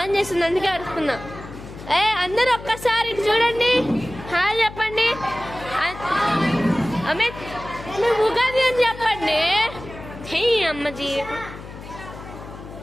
చేస్తుంది అందుకే అరుస్తున్నా. అందరూ ఒక్కసారి ఇటు చూడండి. హాయ్ చెప్పండి. అమిత్ ఉగాది అని చెప్పండి. హే అమ్మజీ.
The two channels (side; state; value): left; noise; hum, 14 dB below the sound